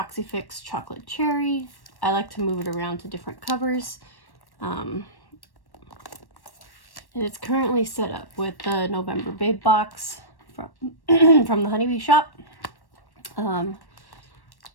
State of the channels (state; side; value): late; right; 1.1 ms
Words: Fix chocolate cherry. I like to move it around to different covers. And it's currently set up with the November Babe box from, from the Honeybee shop. And